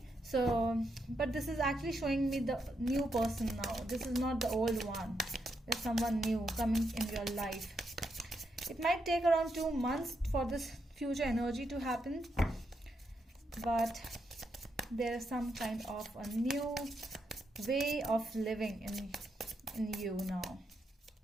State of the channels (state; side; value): normal; both; correlation 0.81